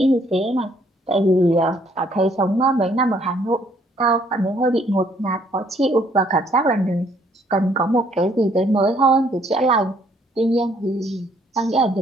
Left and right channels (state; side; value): normal; both; correlation 0.65